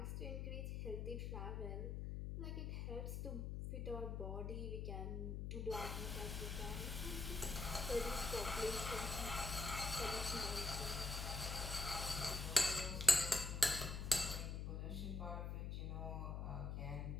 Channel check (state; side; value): noise; left; hum, 3 dB below the sound